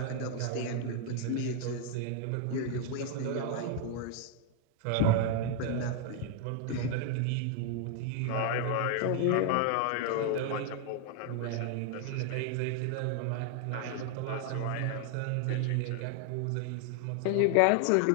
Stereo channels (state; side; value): different; both; correlation 0.00